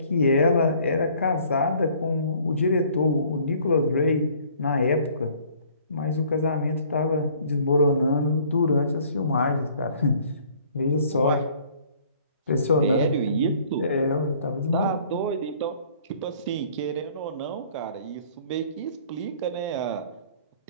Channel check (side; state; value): both; inverted; correlation -0.56